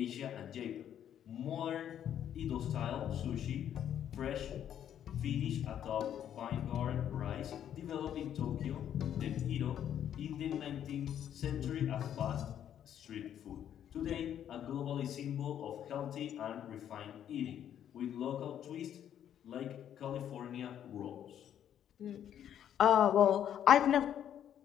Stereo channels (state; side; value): quieter; right; 10.0 dB